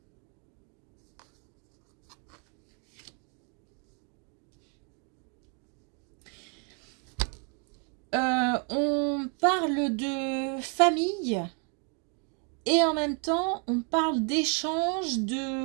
On parle de famille et en même temps on parle d'échange,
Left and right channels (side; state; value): left; quieter; 38.2 dB